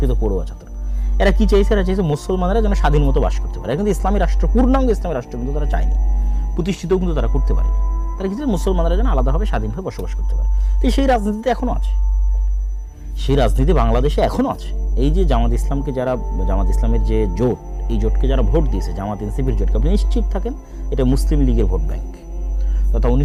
পড়ুয়া ছাত্র। এরা কি চাইছে? এরা চাইছে মুসলমানরা যেন স্বাধীন মতো বাস করতে পারে। কিন্তু ইসলামী রাষ্ট্র, পূর্ণাঙ্গ ইসলামী রাষ্ট্র কিন্তু তারা চায়নি, প্রতিষ্ঠিতও কিন্তু তারা করতে পারেনি। তারা কিন্তু মুসলমানরা যেন আলাদাভাবে স্বাধীনভাবে বসবাস করতে পারে। তো সেই রাজনীতিতে এখনও আছে, সেই রাজনীতি বাংলাদেশে এখনও আছে। এই যে জামাত ইসলামকে যারা, জামাত ইসলামের যে জোট, এই জোটকে যারা ভোট দিয়েছে, জামাত এনসিপির জোটকে, আপনি নিশ্চিত থাকেন এটা মুসলিম লীগের ভোট ব্যাংক। তথা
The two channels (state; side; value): identical; both; correlation 1.00